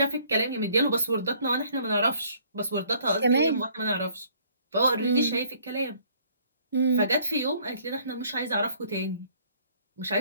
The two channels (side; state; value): both; inverted; correlation -0.60